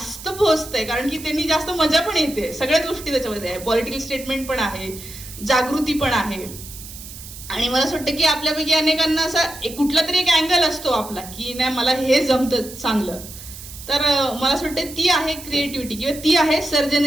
पोहोचतंय. कारण की त्यांनी जास्त मजा पण येते. सगळ्याच गोष्टी त्याच्यामध्ये आहे. पॉलिटिकल स्टेटमेंट पण आहे, जागृती पण आहे. आणि मला असं वाटतं की आपल्यापैकी अनेकांना असा कुठला तरी एक अँगल असतो आपला की नाही मला हे जमतं चांगलं. तर मला असं वाटतं ती आहे क्रिएटिव्हिटी किंवा ती आहे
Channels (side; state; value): right; noise; hiss, 14 dB below the sound